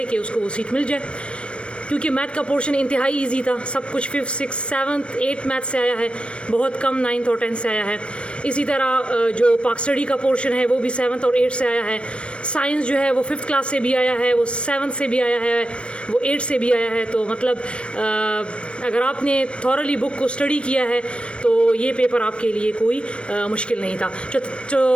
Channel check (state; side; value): late; right; 0.058 ms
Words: कि उसको वो सीट मिल जाए, क्योंकि मैथ का पोर्शन इंतहाई इजी था। सब कुछ 5th 6th 7th 8th math से आया है, बहुत कम 9th और 10th से आया है। इसी तरह जो पाक स्टडी का पोर्शन है वो भी 7th और 8th से आया है। साइंस जो है वो 5th क्लास से भी आया है, वो 7th से भी आया है, वो 8th से भी आया है। तो मतलब अगर आपने थॉरली बुक को स्टडी किया है तो ये पेपर आपके लिए कोई मुश्किल नहीं था।